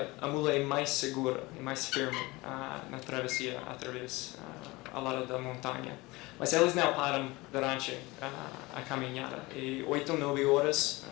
a mula é mais segura e mais firme na travessia através ao lado da montanha. Mas eles não param durante a caminhada. E 8 ou 9 horas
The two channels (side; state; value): right; quieter; 22.3 dB